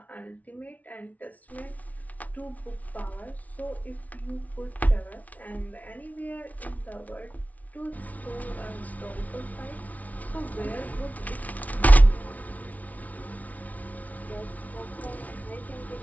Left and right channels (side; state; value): right; late; 0.072 ms